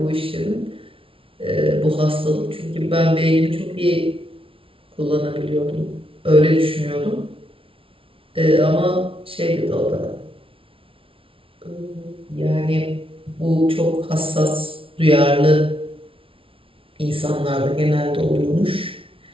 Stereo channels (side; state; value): left; late; 0.26 ms